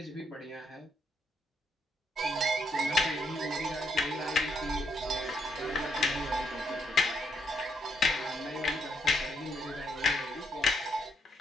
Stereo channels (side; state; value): both; normal; correlation 0.75